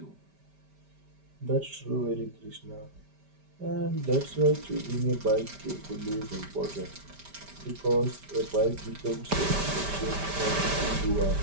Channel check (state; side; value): late; left; 5.1 ms